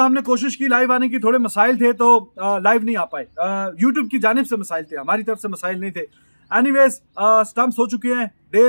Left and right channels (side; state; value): both; inverted; correlation -1.00